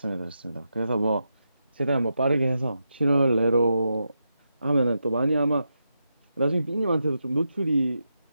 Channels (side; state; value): both; inverted; correlation -0.87